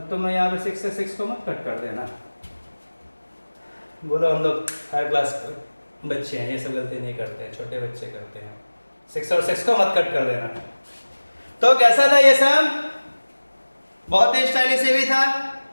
तो मैं यहाँ पे 6 से 6 को मत कट कर देना, बोलो हम लोग हायर क्लास बच्चे हैं, ये सब गलती नहीं करते हैं, छोटे बच्चे करते हैं, 6 और 6 को मत कट कर देना। तो कैसा था ये सब, बहुत ही स्टाइलिश भी था,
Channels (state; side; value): inverted; both; correlation -1.00